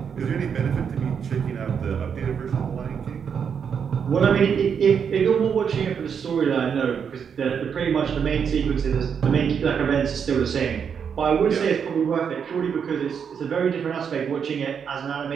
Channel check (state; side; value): quieter; left; 7.1 dB